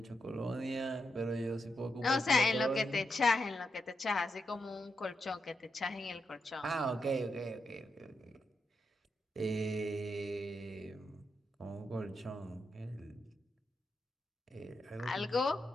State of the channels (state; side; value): normal; both; correlation 0.84